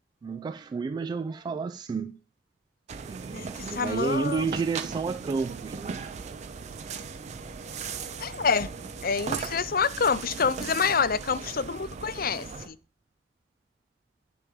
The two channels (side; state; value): both; normal; correlation 0.00